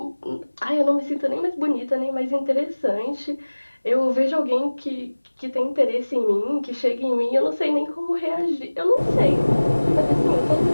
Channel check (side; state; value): both; inverted; correlation -1.00